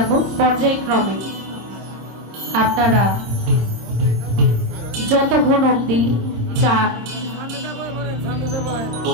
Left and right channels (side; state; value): left; late; 26 ms